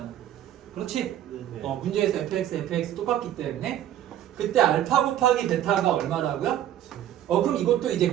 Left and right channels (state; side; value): quieter; left; 11.6 dB